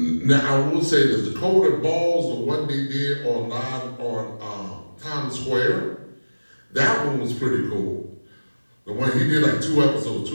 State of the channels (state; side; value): inverted; both; correlation -1.00